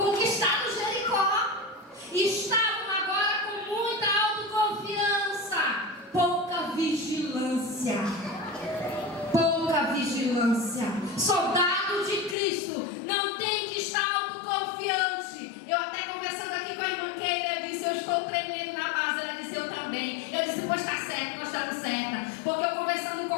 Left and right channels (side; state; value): right; drops out; at 12.4 s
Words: Jericó, e estavam agora com muita autoconfiança, pouca vigilância. Soldado de Cristo não tem que estar autoconfiante. Eu até conversando aqui com a irmã Keila, eu disse: eu estou tremendo na base. Ela disse: eu também. Eu disse: pois está certo, nós estamos certa. Porque eu conversando com